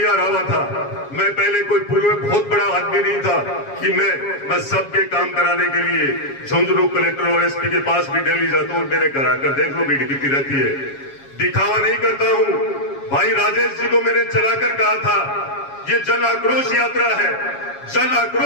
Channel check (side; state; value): right; late; 7.3 ms